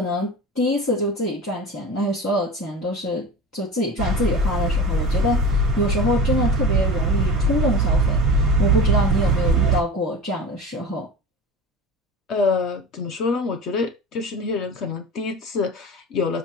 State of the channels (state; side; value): normal; both; correlation 0.31